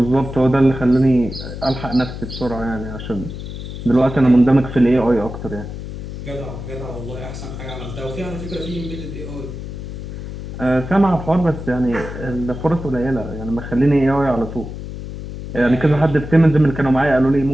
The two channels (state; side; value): noise; left; hum, 9 dB below the sound